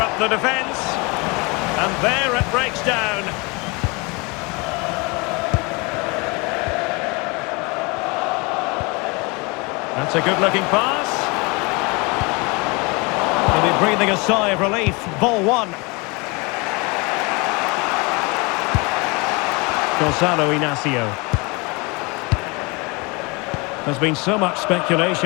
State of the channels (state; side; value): quieter; right; 28.0 dB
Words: up the defence. And there it breaks down. That's a good-looking pass. Maybe breathing a sigh of relief. Ball one. Gonzalo Inacio. There's been so much